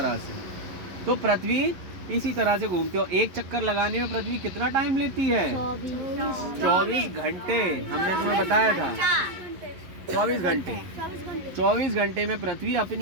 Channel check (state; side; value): late; left; 11 ms